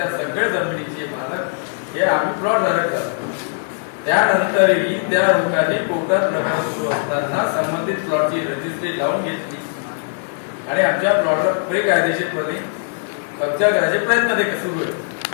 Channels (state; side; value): silent; right; digital silence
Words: सगळ्या जमिनीचे मालक हे आम्ही प्लॉट धारक झालो. त्यानंतरही त्या लोकांनी कोर्टात प्रकार सुरू असताना संबंधित प्लॉटची रजिस्ट्री लावून घेतली आणि आमच्या प्लॉटवर बेकायदेशीरपणे कब्जा करायचे प्रयत्न ते सुरू होते.